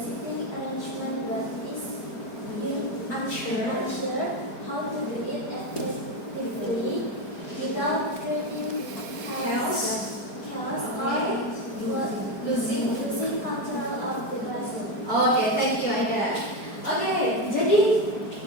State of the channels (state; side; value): late; right; 4.6 ms